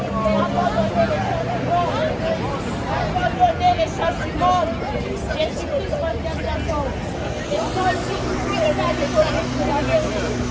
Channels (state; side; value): identical; both; correlation 1.00